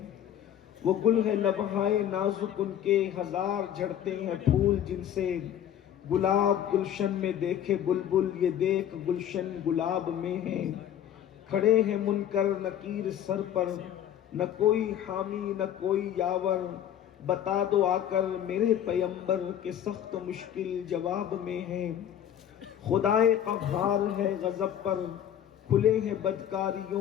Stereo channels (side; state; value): right; quieter; 10.2 dB